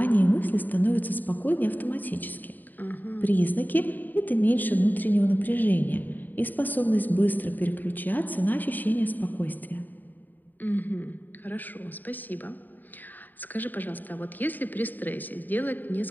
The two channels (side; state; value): right; late; 0.087 ms